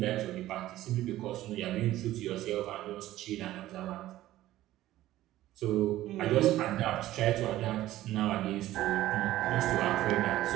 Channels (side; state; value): left; quieter; 14.9 dB